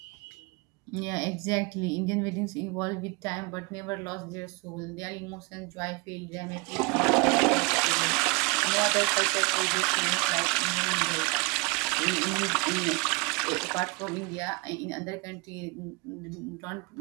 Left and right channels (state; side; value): quieter; left; 29.5 dB